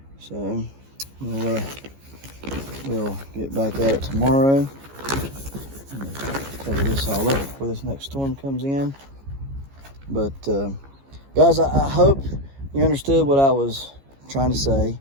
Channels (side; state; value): left; late; 15 ms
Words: So we'll get back at it tomorrow. Cover this all up before this next storm comes in. But guys, I hope you understood what I was trying to say